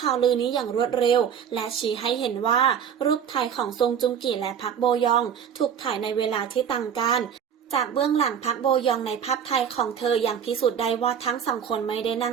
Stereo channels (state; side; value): quieter; left; 8.2 dB